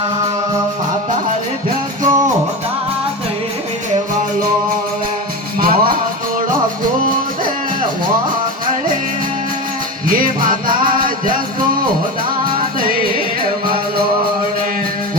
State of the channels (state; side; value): normal; both; correlation 0.23